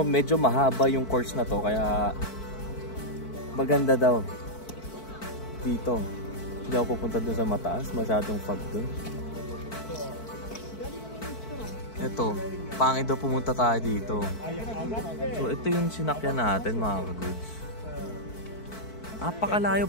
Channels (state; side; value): late; right; 4.5 ms